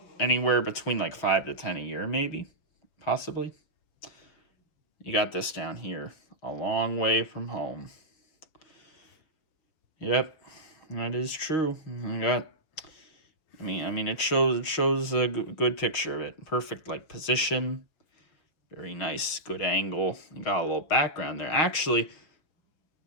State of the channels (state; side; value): late; right; 6.4 ms